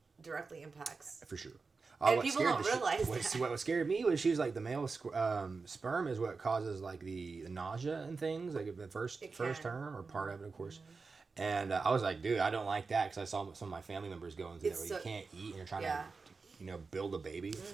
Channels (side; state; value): left; quieter; 4.4 dB